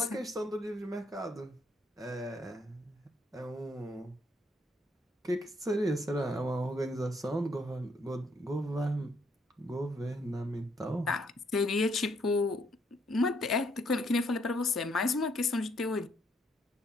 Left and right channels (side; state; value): both; normal; correlation 0.71